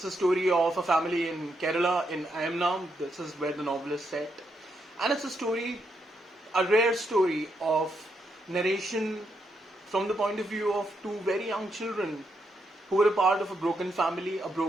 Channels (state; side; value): normal; both; correlation 0.80